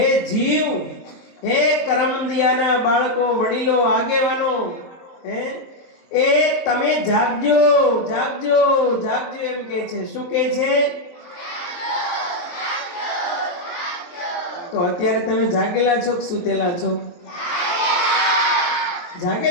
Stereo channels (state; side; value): late; right; 22 ms